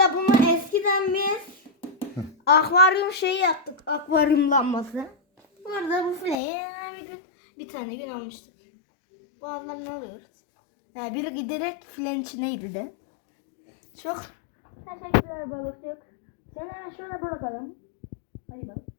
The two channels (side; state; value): right; drops out; at 6.4 s